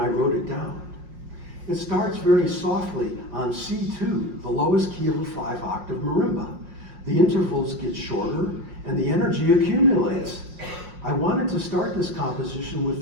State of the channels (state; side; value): late; left; 5.5 ms